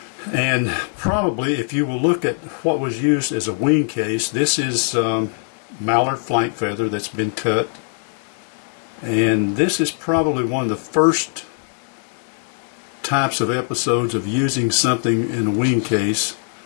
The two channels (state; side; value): silent; right; 61 dB below the other